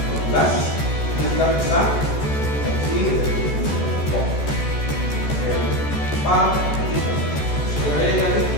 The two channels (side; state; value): right; late; 14 ms